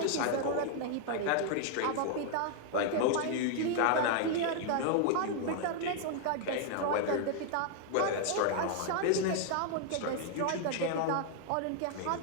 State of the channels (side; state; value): both; different; correlation 0.00